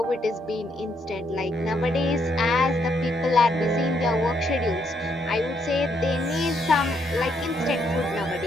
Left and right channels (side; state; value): both; normal; correlation 0.74